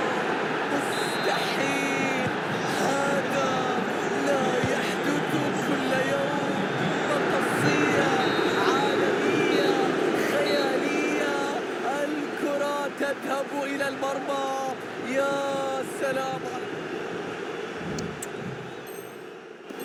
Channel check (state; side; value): identical; both; correlation 1.00